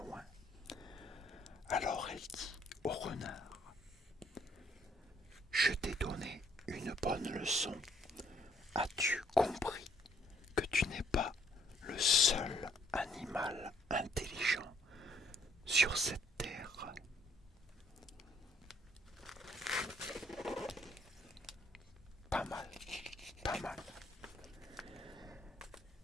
Alors elle dit au renard: je t'ai donné une bonne leçon. As-tu compris que tu n'es pas le seul animal intelligent sur cette terre? Pas mal, pas mal.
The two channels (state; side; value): normal; both; correlation 0.65